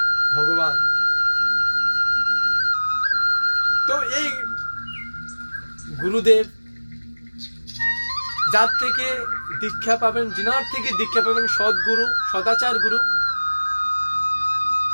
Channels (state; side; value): inverted; both; correlation -1.00